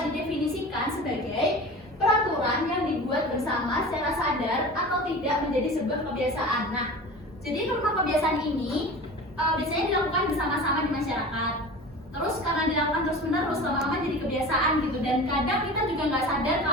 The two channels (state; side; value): normal; both; correlation 0.35